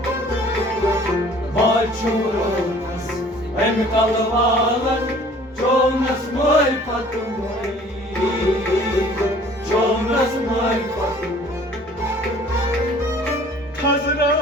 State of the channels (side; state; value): both; normal; correlation 0.52